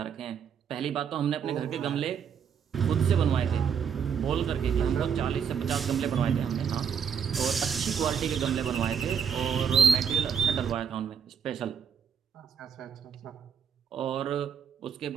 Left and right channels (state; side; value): quieter; left; 7.2 dB